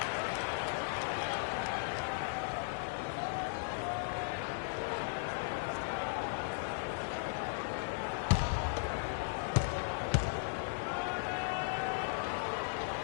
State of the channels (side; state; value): right; silent; digital silence